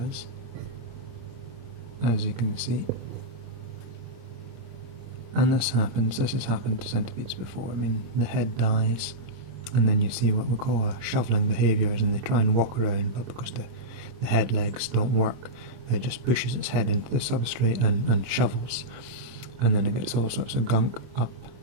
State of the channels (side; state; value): left; late; 26 ms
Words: as you can see. And this has happened to centipedes before. I mean, the head dies, and then you see what we call a shoveling behaviours, and they try and walk around, but because the head legs don't work, it just pushes its head into the substrate and shovels. And then it gets all sorts of gunk